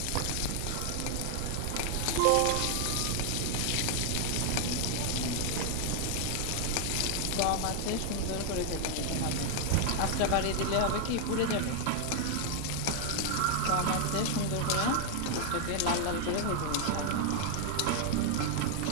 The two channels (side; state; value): both; different; correlation 0.00